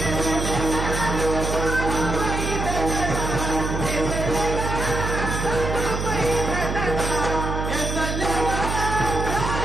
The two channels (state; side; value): noise; right; hum, 3 dB below the sound